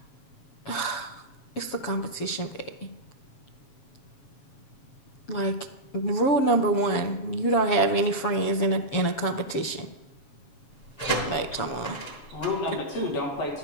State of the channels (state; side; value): late; right; 7.3 ms